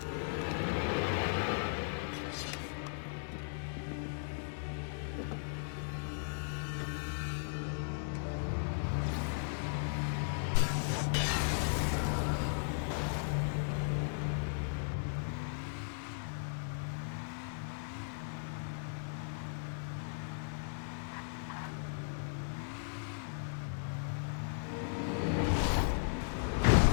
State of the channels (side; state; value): right; silent; digital silence